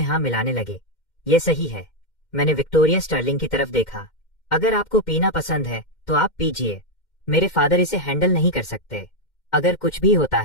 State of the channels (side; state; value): right; late; 2.1 ms